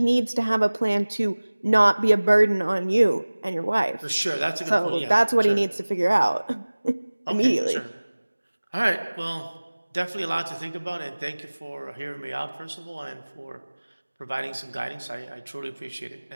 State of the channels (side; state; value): both; inverted; correlation -1.00